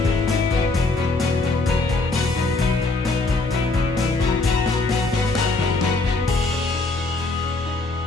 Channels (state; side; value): quieter; right; 3.3 dB